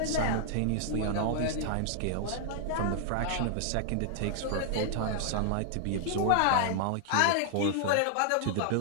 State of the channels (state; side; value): different; both; correlation -0.01